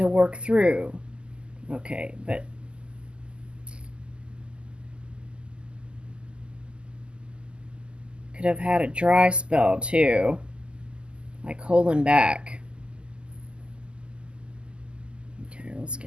work through. Okay, but could have had a dry spell too, like holding back. Okay, let's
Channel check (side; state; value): left; late; 0.050 ms